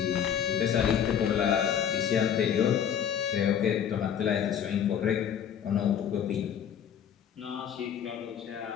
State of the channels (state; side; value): quieter; right; 8.8 dB